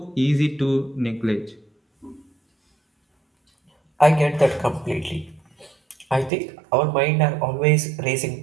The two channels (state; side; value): drops out; left; at 6.3 s